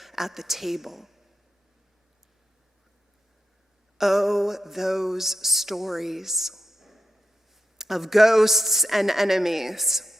at the table. Oh, those stories of ghosts and enemies.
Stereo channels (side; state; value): both; normal; correlation 0.87